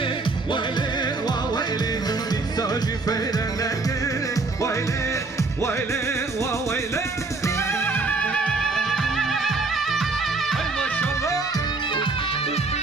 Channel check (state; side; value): quieter; left; 3.6 dB